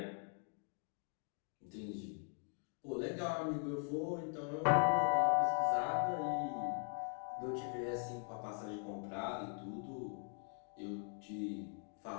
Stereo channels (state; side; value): silent; right; 50 dB below the other